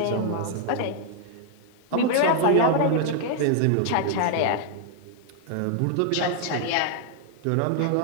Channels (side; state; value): both; different; correlation 0.00